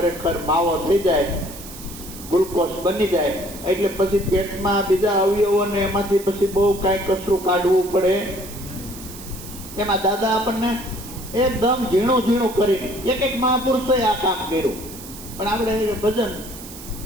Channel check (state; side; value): noise; right; hiss, 14 dB below the sound